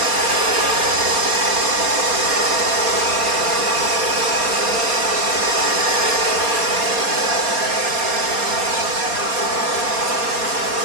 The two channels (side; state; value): left; late; 4.3 ms